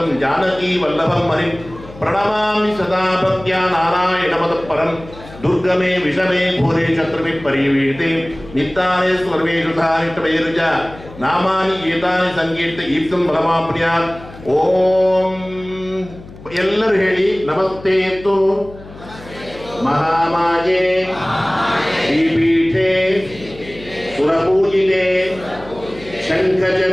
ಜಾನಕೀ ವಲ್ಲಭಂ ಹರಿಂ ಪ್ರಣಮಾಮಿ ಸದಾ ಭಕ್ತ್ಯಾ ನಾರಾಯಣಮತಃಪರಂ. ದುರ್ಗಮೇ ವಿಷಮೇ ಘೋರೆ ಶತ್ರುಭಿ ಪರಿವೀತೆ ನಿತ್ತಾನೆ ಸರ್ವೇಷು ಧಾರಿತವೈರುಜ ನಾಮಾನಿ ಗೀತಾನಿ ಸಂಕೀರ್ತ ಈಪ್ಸಂ ಬಲಮಾಪ್ರ್ಯಾತ್. ಓಂ ಎಲ್ಲರೂ ಹೇಳಿ. ನಮಸ್ತೇತು ಮಹಾಮಾಯೇ ಶ್ರೀಪೀಠೆ ಸುರಪೂಜಿತೆ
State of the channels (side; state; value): left; noise; hum, 18 dB below the sound